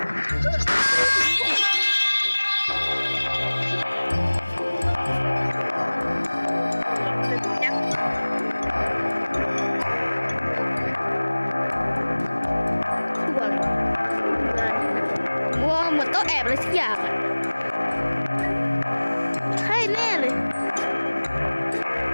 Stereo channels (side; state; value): both; inverted; correlation -1.00